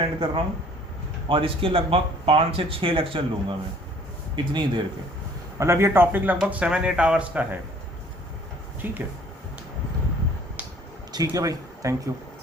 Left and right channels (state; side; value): normal; both; correlation 0.55